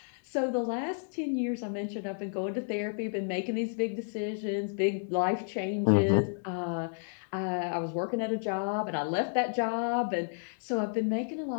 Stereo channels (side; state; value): right; silent; digital silence